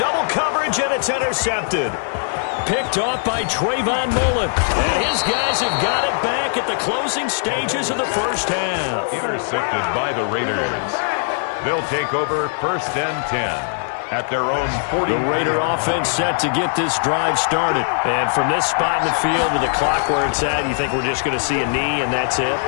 coverage, and it's intercepted. Picked off by Trayvon Mullen. And his guys have got it back at the closing stages of the first half. Intercepted by the Raiders. They'll take over first and 10. At their own 40. The Raider offense set to get this drive started. And from this spot in the field with the clock where it's at, you think we're just going to see a knee and that's it?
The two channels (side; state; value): right; silent; digital silence